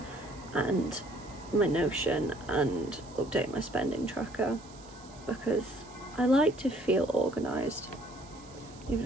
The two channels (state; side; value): noise; right; hiss, 22 dB below the sound